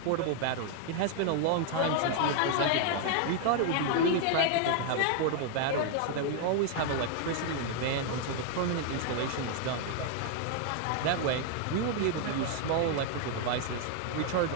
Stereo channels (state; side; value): different; both; correlation 0.00